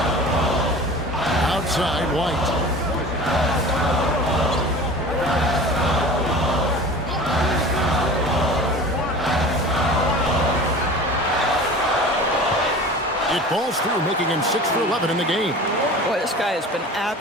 Outside, White. It falls through, making him 6 for 11 in the game. Boy, this guy has been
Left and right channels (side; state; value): both; normal; correlation 0.39